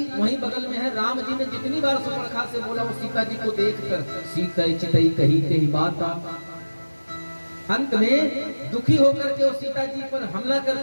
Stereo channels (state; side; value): inverted; both; correlation -1.00